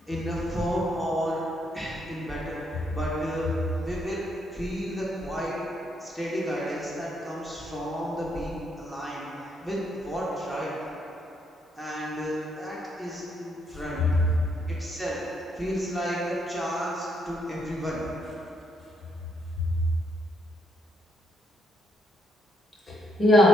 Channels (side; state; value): both; normal; correlation 0.74